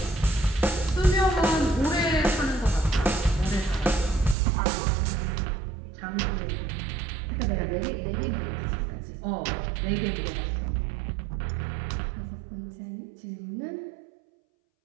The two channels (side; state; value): left; drops out; at 4.4 s